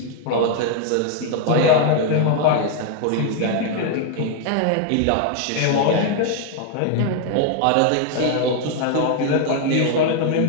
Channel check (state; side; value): different; both; correlation 0.00